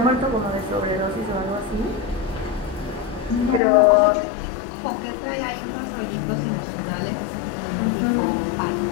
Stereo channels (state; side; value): drops out; right; at 3.6 s